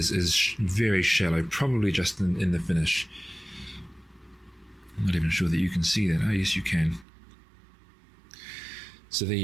very shallow, probably just in the finish. I'm not even sure that you can see that. Oh, yes, you can. So there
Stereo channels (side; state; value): left; drops out; at 7.1 s